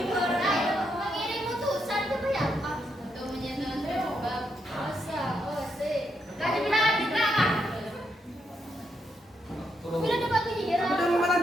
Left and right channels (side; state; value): both; normal; correlation 0.80